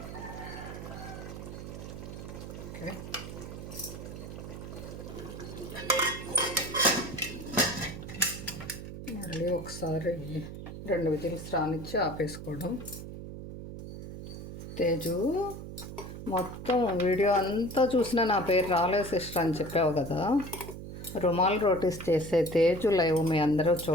ఓకే, మళ్ళీ ఒకసారి 2 విజిల్స్ రానిచ్చి ఆపేసుకోవడం. తేజు మొత్తం వీడియో అంతా చూసినా నా పేరు రాలేదు సిస్టర్ అని చెప్పావు కదా. రుమాల్ రోటీస్ చేసే తేజు లైవ్ మీ అందరూ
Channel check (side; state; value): right; noise; hum, 10 dB below the sound